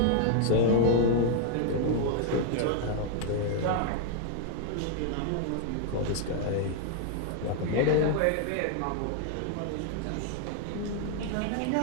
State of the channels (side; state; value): both; different; correlation 0.00